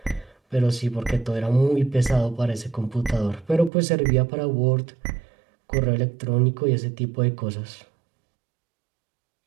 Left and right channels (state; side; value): drops out; left; at 3.7 s